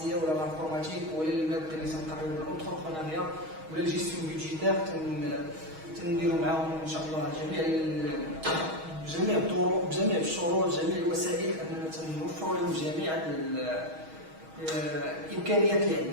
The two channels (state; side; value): late; left; 6.3 ms